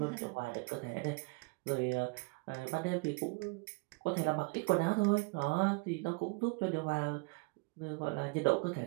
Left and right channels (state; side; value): quieter; left; 28.6 dB